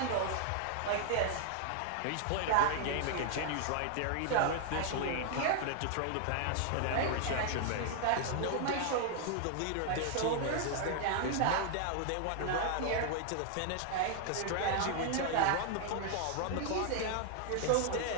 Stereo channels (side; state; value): both; different; correlation 0.00